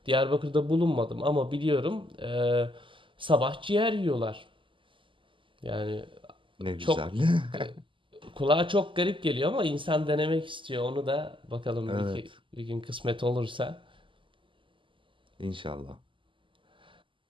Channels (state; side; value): late; left; 0.25 ms